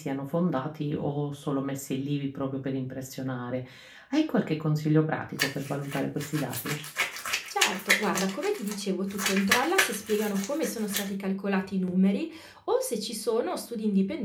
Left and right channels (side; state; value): both; identical; correlation 1.00